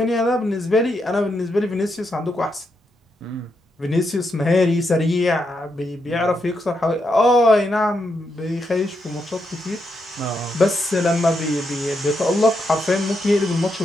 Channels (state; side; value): normal; both; correlation 0.81